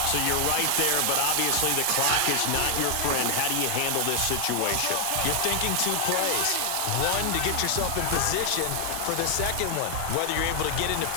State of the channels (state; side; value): different; both; correlation 0.00